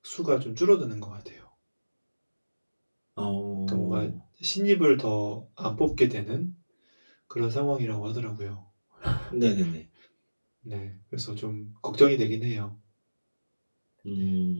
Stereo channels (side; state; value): both; inverted; correlation -1.00